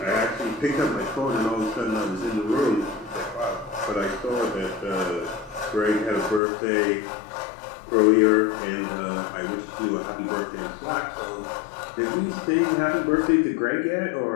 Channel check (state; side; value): drops out; right; at 6.4 s